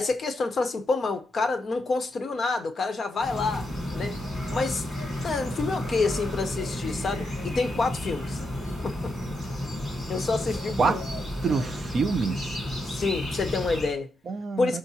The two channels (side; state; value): both; normal; correlation 0.83